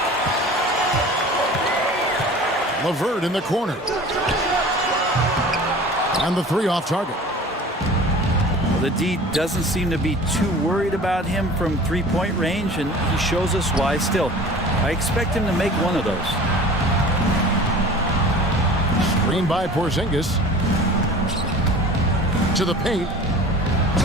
LeVert in the corner. And the 3 off target. Well, the D doesn't seem to be too worried about him from three-point range, and he shows us why still. I expect him to make one of those. Screen by Porzingis. To the paint.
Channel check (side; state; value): both; normal; correlation 0.42